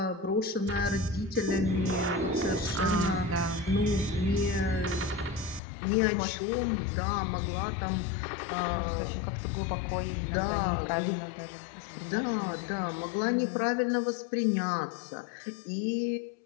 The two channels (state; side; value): drops out; right; at 5.6 s